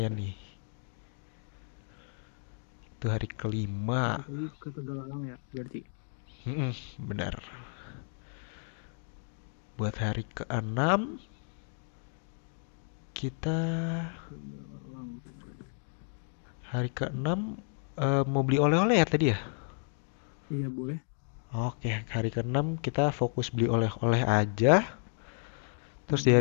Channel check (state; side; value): silent; right; 56 dB below the other